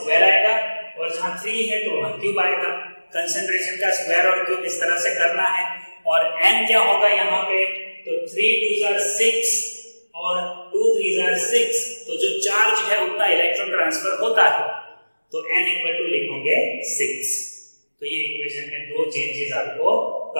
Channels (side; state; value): both; inverted; correlation -1.00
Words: आएगा और जहां 3 है तो वहां क्यूब आएगा। कंसंट्रेशन का स्क्वायर और क्यूब इस तरह से करना है। और n क्या होगा यहाँ पे, तो 3 2s are 6 और 2 3s are 6, तो जो चार्ज है उतना इलेक्ट्रॉन ट्रांसफर होता है, तो n इक्वल टू लिखोगे 6। तो ये इक्वेशन में दो चेंजेस आपको